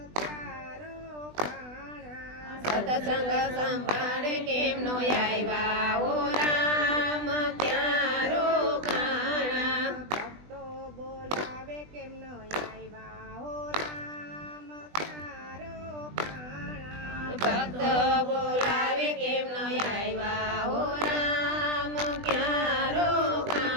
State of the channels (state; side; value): late; left; 20 ms